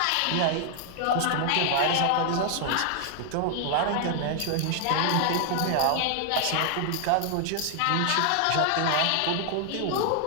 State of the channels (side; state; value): both; different; correlation 0.00